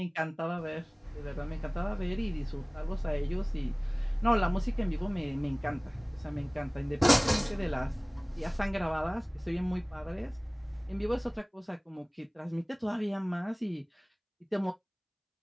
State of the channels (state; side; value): identical; both; correlation 1.00